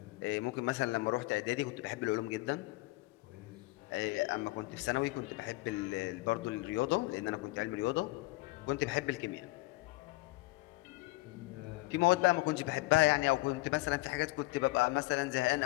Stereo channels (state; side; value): quieter; right; 21.5 dB